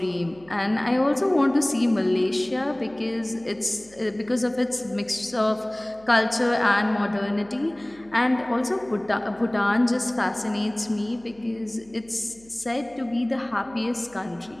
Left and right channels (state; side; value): noise; right; hum, 26 dB below the sound